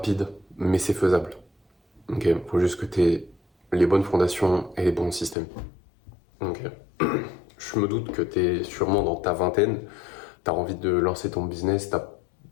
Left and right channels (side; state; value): right; drops out; at 5.4 s